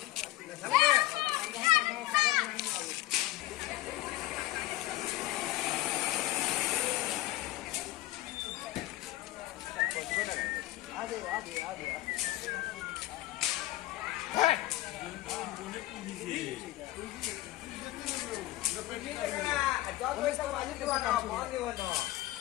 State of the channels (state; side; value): quieter; right; 17.0 dB